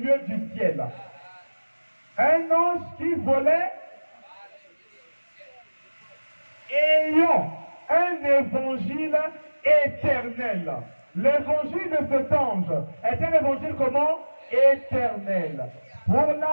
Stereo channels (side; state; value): both; inverted; correlation -1.00